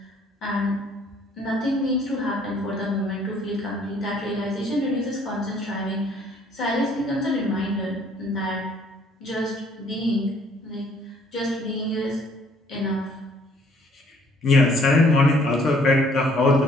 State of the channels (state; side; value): normal; both; correlation 0.61